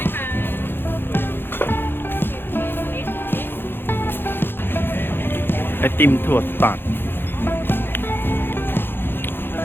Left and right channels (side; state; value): right; late; 0.10 ms